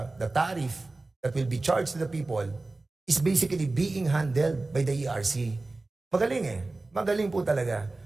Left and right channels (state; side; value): quieter; left; 3.2 dB